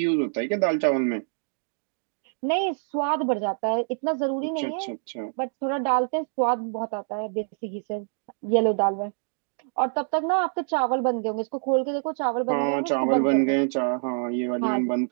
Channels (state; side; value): silent; left; digital silence